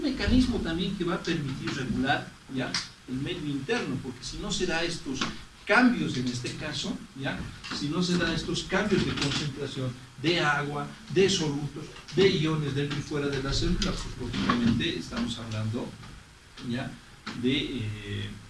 mecanismo también que va a permitir regular, ¿ya? El medio interno, porque si no se da estos cambios, en este caso, ¿ya? Si no se da estos cambios de concentración de agua, de solutos, de iones dentro y fuera de la célula, pues lógicamente estamos hablando, ¿ya? De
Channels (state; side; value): identical; both; correlation 1.00